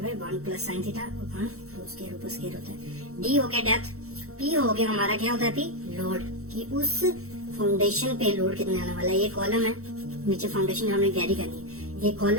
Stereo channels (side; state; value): left; late; 0.64 ms